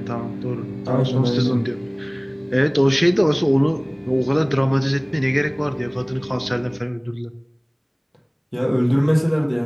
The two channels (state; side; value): identical; both; correlation 1.00